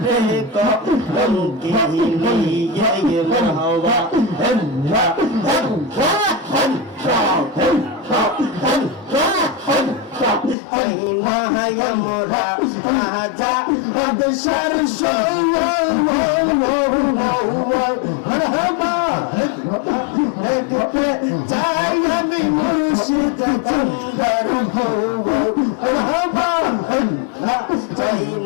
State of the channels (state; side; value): drops out; right; at 10.6 s